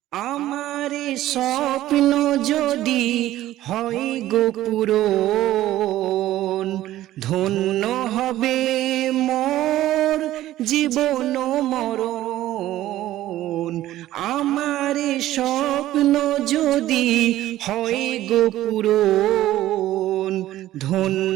আমার স্বপ্ন যদি হয় গো পূরণ, ধন্য হবে মোর জীবন মরণ। আমার স্বপ্ন যদি হয় গো পূরণ,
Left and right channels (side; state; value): left; quieter; 14.4 dB